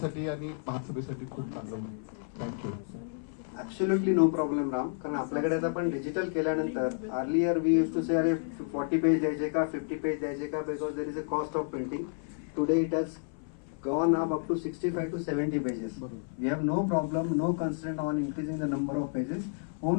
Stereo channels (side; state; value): right; silent; 57 dB below the other